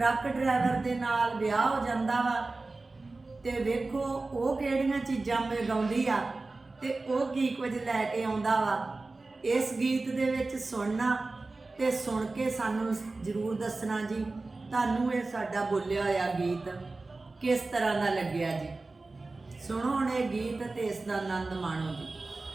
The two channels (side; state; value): left; quieter; 3.4 dB